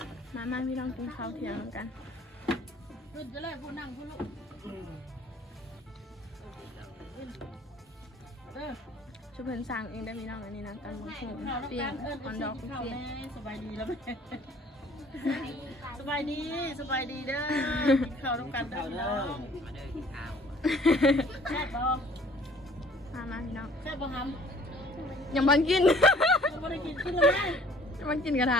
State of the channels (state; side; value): normal; both; correlation 0.55